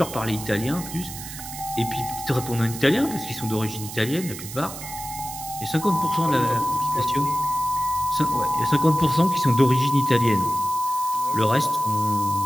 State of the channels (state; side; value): noise; right; hiss, 11 dB below the sound